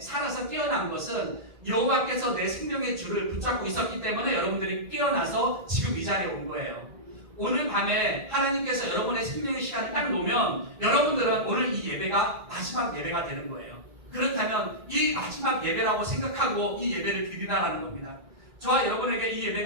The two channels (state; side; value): late; left; 1.8 ms